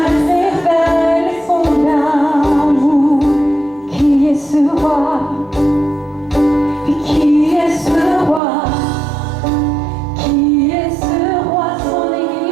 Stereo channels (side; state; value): left; drops out; at 8.4 s